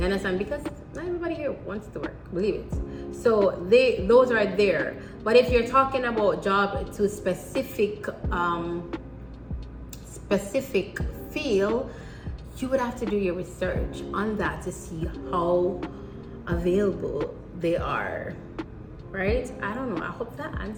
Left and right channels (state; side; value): identical; both; correlation 1.00